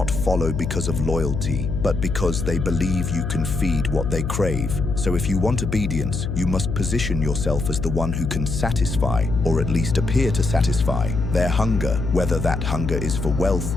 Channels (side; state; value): left; noise; hum, 3 dB below the sound